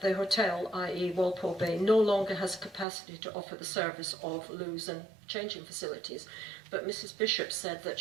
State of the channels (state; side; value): drops out; left; at 2.9 s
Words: the hotel, i.e. Walpole Bay, no longer has capacity to offer the service of loos and changing facilities, but Mrs Bishop said that